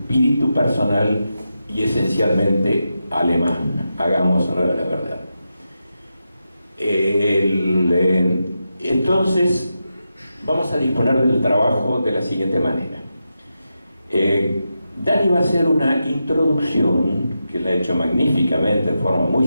personal y esencialmente alemán. Hagamos honor a la verdad. Entonces, vamos a disponer del trabajo de la siguiente manera. Dani va a hacer una introducción, que la ha hecho magníficamente, en forma muy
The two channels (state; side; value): inverted; both; correlation -0.88